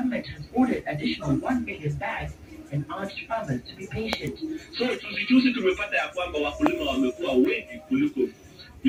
has ordered additional 1 million bags and urged farmers to be patient. So tusijuzi tumepata ya kwamba wakulima wamekuwa wengi kuliko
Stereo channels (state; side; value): identical; both; correlation 1.00